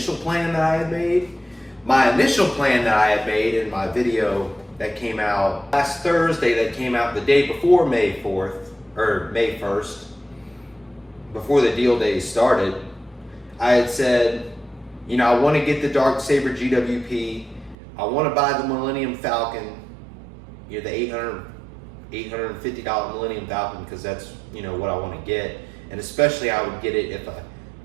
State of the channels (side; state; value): left; drops out; at 17.8 s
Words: plan that I had made. My initial plan that I had made in my video that came out last Thursday, that came out the day before May 4th, or May 1st, before the deal days started, I had said, you know, I want to get the Darksaber GWP. I want to buy the Millennium Falcon, you know, the $850 Millennium Falcon, because that's, you know, what I want to get. And especially I would get it